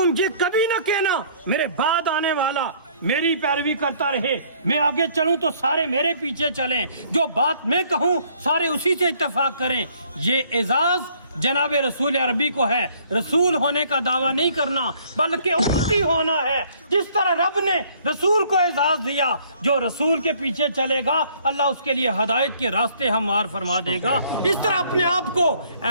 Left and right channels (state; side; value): inverted; both; correlation -0.61